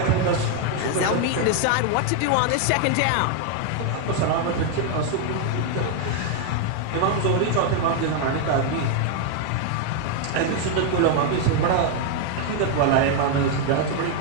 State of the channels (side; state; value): both; different; correlation 0.00